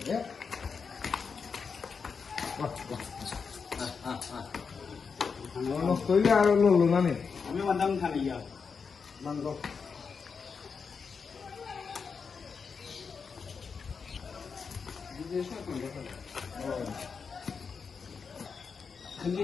নষ্ট হইলে আর লড়লো না নে আমি বান্দাম খালি ইয়া বন্ধ खंजी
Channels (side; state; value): right; quieter; 5.6 dB